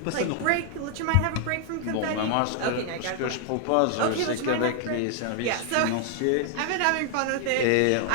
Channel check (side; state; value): both; different; correlation 0.00